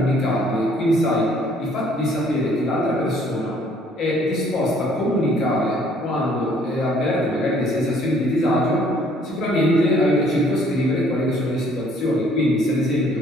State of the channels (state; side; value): normal; both; correlation 0.61